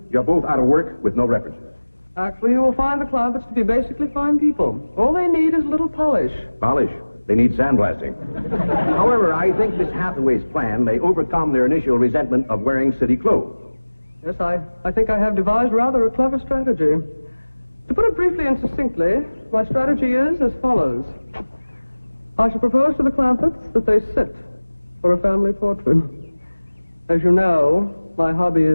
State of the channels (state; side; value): inverted; both; correlation -1.00